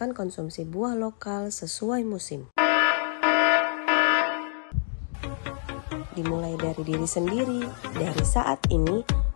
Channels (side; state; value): right; silent; 61 dB below the other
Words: konsumsi buah lokal sesuai musim. Dimulai dari diri sendiri, dari saat ini